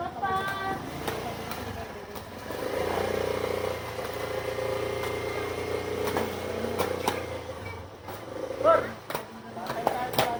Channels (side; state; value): both; identical; correlation 1.00